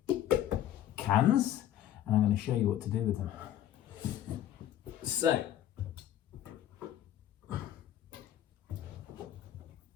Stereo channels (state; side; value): quieter; right; 11.7 dB